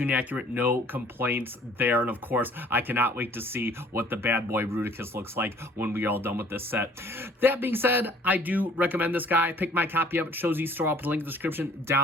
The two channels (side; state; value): both; normal; correlation 0.55